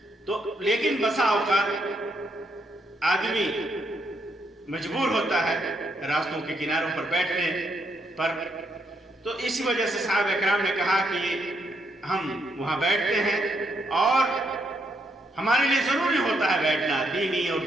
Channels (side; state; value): both; normal; correlation 0.76